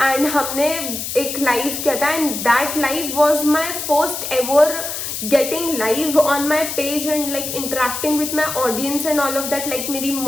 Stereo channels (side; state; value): left; noise; hiss, 5 dB below the sound